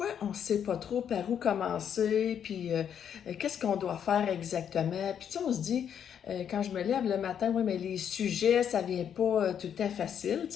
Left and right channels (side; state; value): right; quieter; 8.6 dB